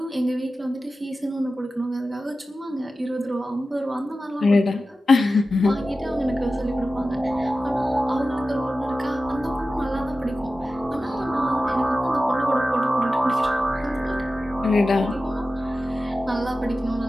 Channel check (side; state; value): both; normal; correlation 0.94